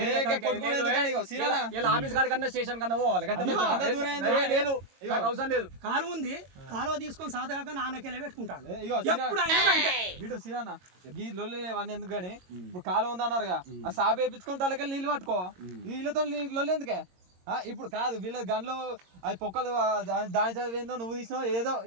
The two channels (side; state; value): left; late; 22 ms